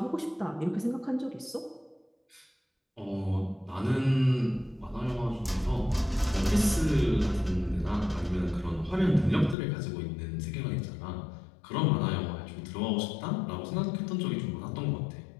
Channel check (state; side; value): drops out; right; at 9.6 s